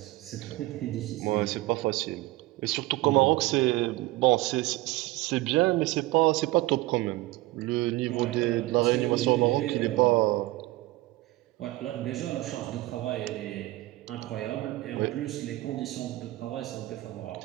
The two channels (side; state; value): left; quieter; 18.9 dB